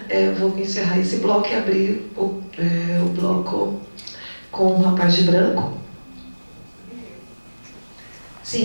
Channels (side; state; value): both; inverted; correlation -1.00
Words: Eu vou encerrar esse bloco e abrir o bloco com o rapaz de branco.